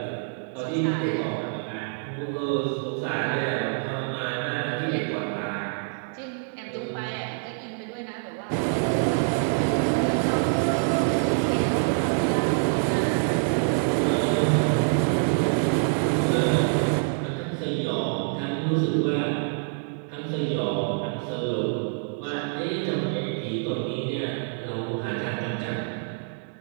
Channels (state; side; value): silent; left; digital silence